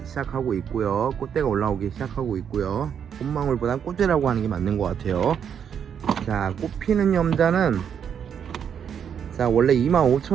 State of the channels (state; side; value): quieter; left; 8.0 dB